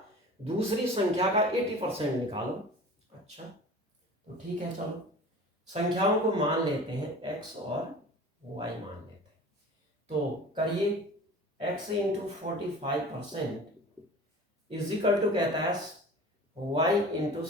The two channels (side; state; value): both; normal; correlation 0.40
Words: दूसरी संख्या का 80% निकालो। अच्छा, तो ठीक है, चलो संख्याओं को मान लेते हैं, x और y मान लेते हैं, तो करिए, x into 45% is equal to कहता है y इंटू